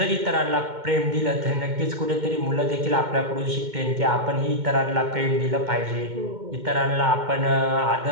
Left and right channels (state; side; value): late; left; 2.1 ms